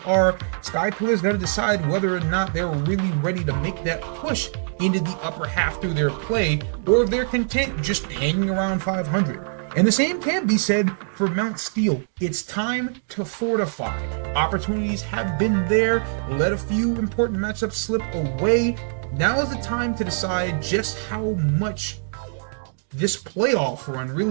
are. Sky Pillar's got to decide whether or not they're really ready to make that push into the upper half through their play, or if they're content just hanging around 500. And the same can be said for Mount Steel. It's time to fortify. Opportunities have been there. Let a few important matchups slip away. Now is the time to decide just how much this playoff run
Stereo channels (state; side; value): silent; left; digital silence